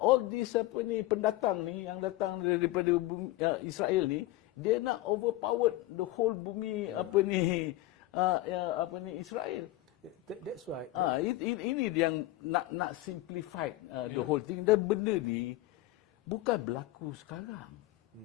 this pendatang ni yang datang daripada Israel ni, dia nak overpower the whole bumi Israel. That's why ini yang nak simplify the whole thing. Dan benda ni bukan berlaku sekarang.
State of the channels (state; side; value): quieter; right; 17.0 dB